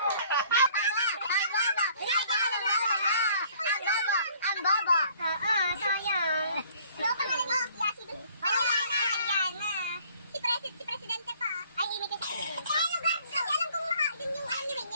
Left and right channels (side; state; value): both; inverted; correlation -0.58